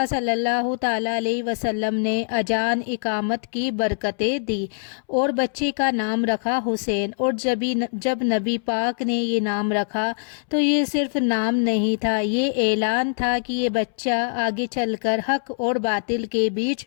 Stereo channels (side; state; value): right; silent; 63 dB below the other